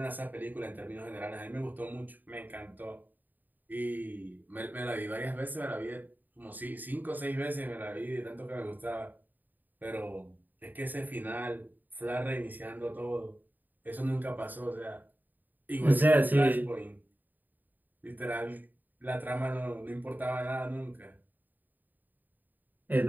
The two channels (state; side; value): late; left; 0.087 ms